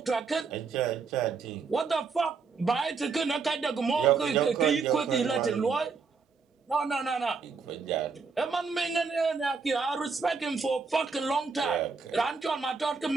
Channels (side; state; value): left; quieter; 5.0 dB